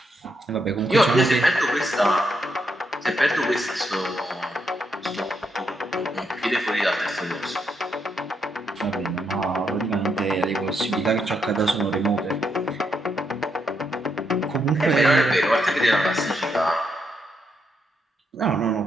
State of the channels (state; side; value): normal; both; correlation 0.79